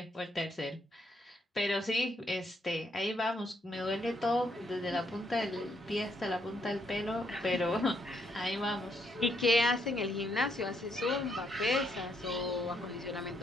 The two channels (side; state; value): both; normal; correlation 0.74